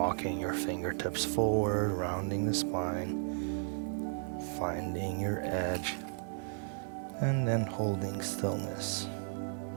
your fingertips forward, rounding the spine, finding your edge, and then holding stillness.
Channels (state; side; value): silent; left; 55 dB below the other